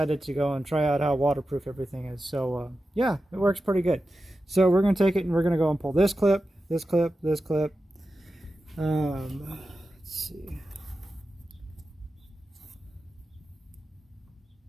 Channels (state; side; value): normal; both; correlation 0.92